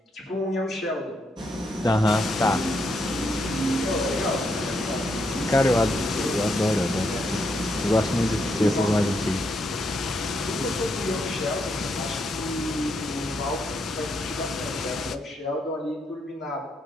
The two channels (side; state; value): both; normal; correlation 0.79